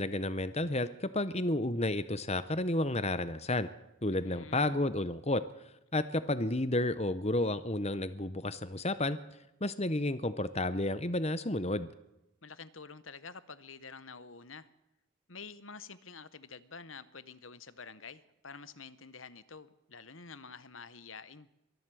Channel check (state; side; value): normal; both; correlation 0.46